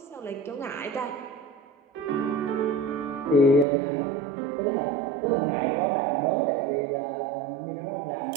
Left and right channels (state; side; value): drops out; left; at 3.7 s